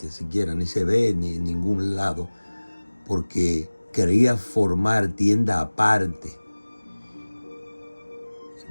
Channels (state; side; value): inverted; both; correlation -1.00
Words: siquiera, ni se ve ni en ningún lado, porque quería formar tienda aparte.